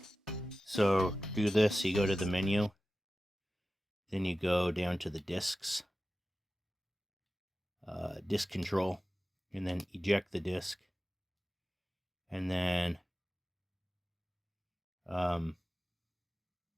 So do this, you go to the menu. Then you go down to the discs. Disk control. And then eject the disk. And then let's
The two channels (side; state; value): both; normal; correlation 0.95